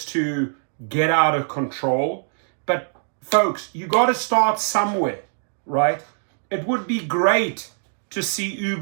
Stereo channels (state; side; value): silent; left; digital silence